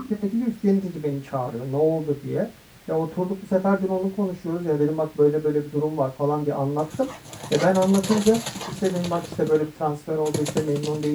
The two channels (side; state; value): both; identical; correlation 1.00